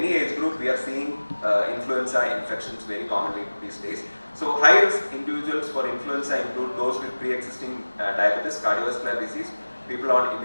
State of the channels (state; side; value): inverted; both; correlation -1.00